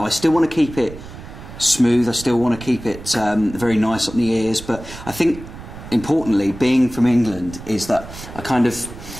I still want to keep it smooth. I still want to keep it very nice on the ears. But I think importantly, being from England, is that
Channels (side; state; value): right; noise; rumble, 14 dB below the sound